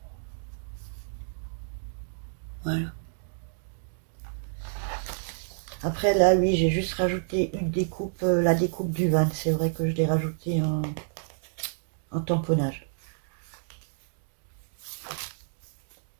Voilà. Après, là, oui, j'ai juste rajouté une découpe, la découpe du van. C'est vrai que je l'ai rajouté en tamponnage.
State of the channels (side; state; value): left; silent; digital silence